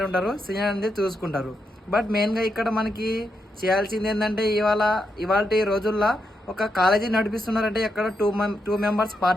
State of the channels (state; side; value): normal; both; correlation 0.83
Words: ఉంటారు, సీనియర్ అనేది చూసుకుంటారు. బట్ మెయిన్గా ఇక్కడ మనకి చేయాల్సింది ఏంటంటే, ఇవాళ రోజుల్లో ఒక కాలేజీ నడిపిస్తున్నారంటే అక్కడ 2 మెంబర్స్